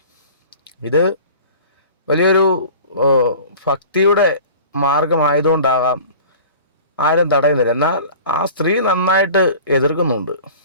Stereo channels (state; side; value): inverted; both; correlation -0.42